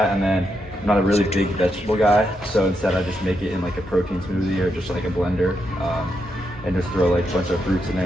and then I'm not a really big vegetable guy, so instead I just make it in like a protein smoothie or just like a blender, and just throw like a bunch of fruits in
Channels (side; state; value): both; normal; correlation 0.82